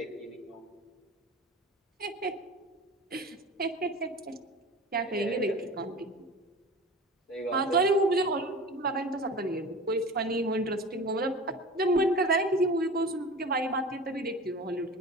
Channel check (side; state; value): both; normal; correlation 0.36